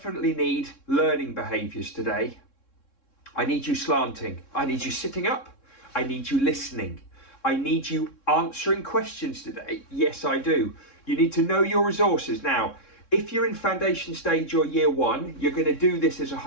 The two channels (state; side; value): late; right; 3.7 ms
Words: need learning behaviours today. I need you slanting. I need you sitting up. I need you listening. I need you answering questions today. Yes, I do. You need to know your resources. Now, if you're in foundation stage or year 1, you're going to do this as a